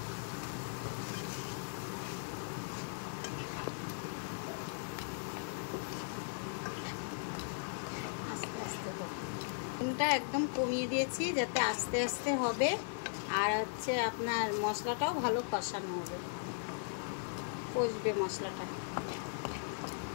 আস্তে একদম কমিয়ে দিয়েছি, যাতে আস্তে আস্তে হবে, আর হচ্ছে আপনার মশলাটাও ভালো কষানো হবে, কষবে মশলাটা।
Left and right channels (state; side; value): silent; right; digital silence